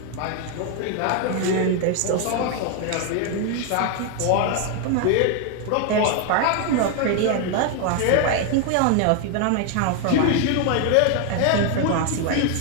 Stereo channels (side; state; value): both; different; correlation 0.01